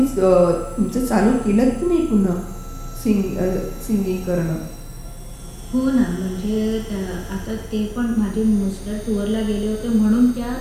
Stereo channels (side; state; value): both; identical; correlation 1.00